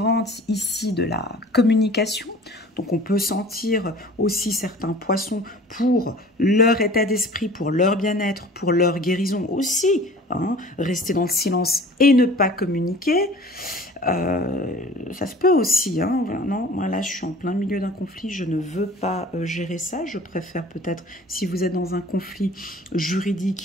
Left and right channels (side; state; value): both; normal; correlation 0.45